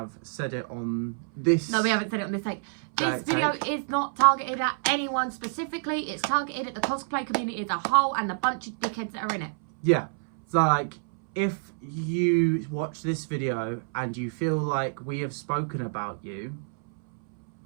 said it on this. No, we haven't said it on this take. This video is not targeted at anyone specifically. It's targeted at the cosplay community as a whole and the bunch of dickheads that are in it. Yeah, so like, if you watch this video and you feel like we have spoken about you,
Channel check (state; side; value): silent; left; 60 dB below the other